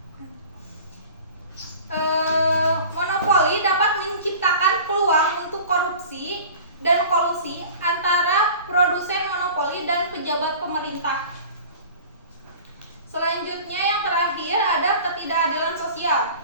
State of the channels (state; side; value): inverted; both; correlation -0.42